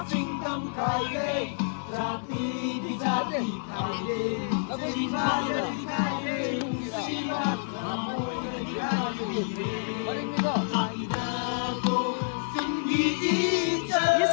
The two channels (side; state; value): right; silent; 59 dB below the other